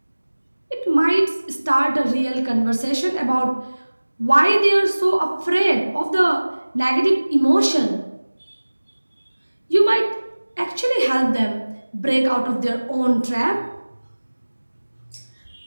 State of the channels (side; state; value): both; inverted; correlation -1.00